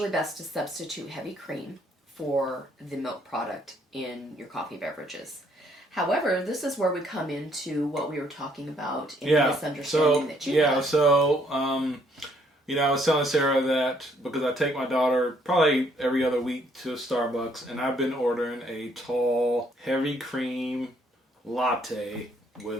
best to substitute heavy cream for the milk product in your coffee beverages. However, this is where we come into what we were talking about in the misunderstanding that you had. I was telling Sarah that because I take my daughter probably every other week to Starbucks, and I've been ordering a tall, heavy cream latte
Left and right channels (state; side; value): normal; both; correlation 0.67